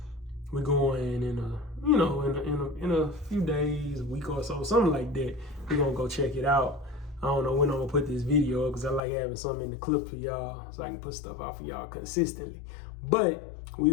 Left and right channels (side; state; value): right; drops out; at 9.0 s